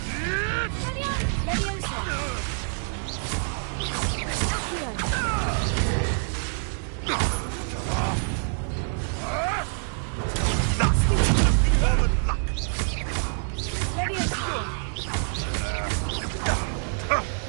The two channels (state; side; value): silent; left; digital silence